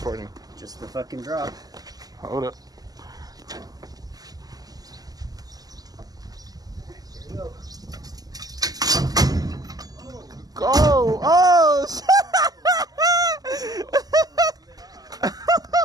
Just the fucking drop. Hold up. Here we go. Go! Oh!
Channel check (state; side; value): late; left; 0.18 ms